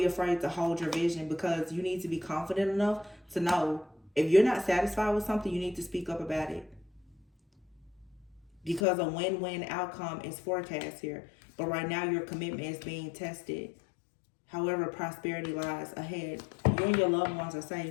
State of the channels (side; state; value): right; drops out; at 8.8 s